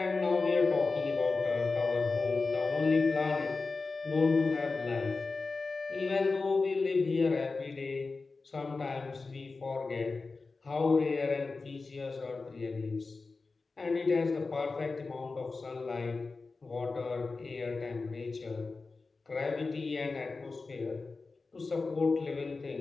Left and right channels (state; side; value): quieter; right; 4.0 dB